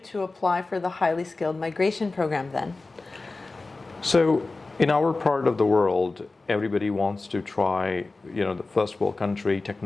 apply for the highly skilled migration program then? So in our part of the world, everybody wants to try, the first world country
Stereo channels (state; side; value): quieter; right; 3.5 dB